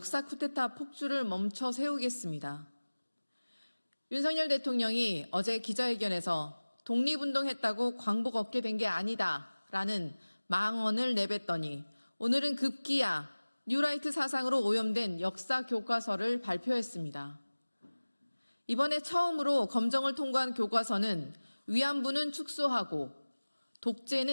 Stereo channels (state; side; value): inverted; both; correlation -1.00